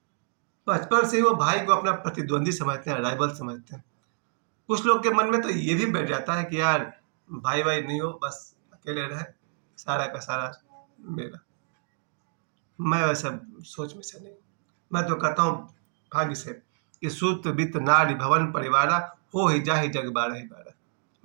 बचपन से ही वो भाई को अपना प्रतिद्वंदी समझते हैं, राइवल समझते हैं। कुछ लोग के मन में तो ये भी बैठ जाता है कि यार भाई भाई नहीं हो, बस अकेले रहे, सारा का सारा मेरा। मैं वैसा सोच में से नहीं, मैं तो कहता हूँ भाग्य से कि सूत वित्त नारी भवन परिवारा, हो ही जा ही जग बारह ही बारह।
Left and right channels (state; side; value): silent; left; 60 dB below the other